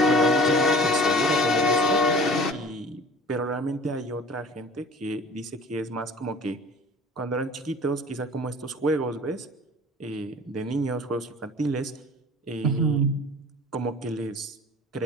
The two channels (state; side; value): normal; both; correlation 0.43